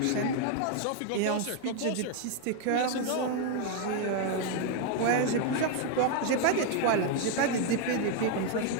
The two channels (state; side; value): different; both; correlation 0.01